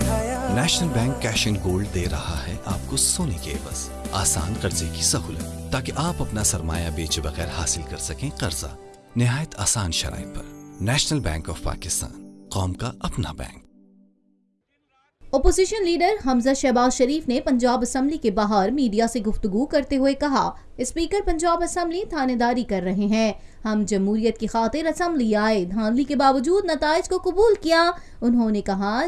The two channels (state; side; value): identical; both; correlation 1.00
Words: National bank cash and gold दे रहा है आपको सोने के एवज आसान कर्जे की सहूलत, ताकि आप अपना सरमाया बेचे बगैर हासिल कर सकें कर्जा निहायत आसान शराइत पर। नेशनल बैंक ऑफ पाकिस्तान, कौम का अपना बैंक। ओपोजिशन लीडर हमजा शहबाज शरीफ ने पंजाब असेंबली के बाहर मीडिया से गुफ्तगू करते हुए कहा, स्पीकर पंजाब असेंबली थानेदारी कर रहे हैं। हम जमहूरियत की खातिर असेंबली आए, धांधली के बावजूद नताइज को कबूल किया। उन्होंने कहा,